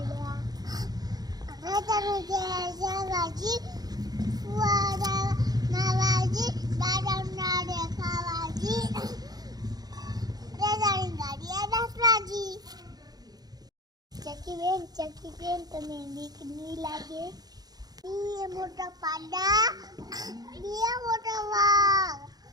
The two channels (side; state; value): left; late; 0.19 ms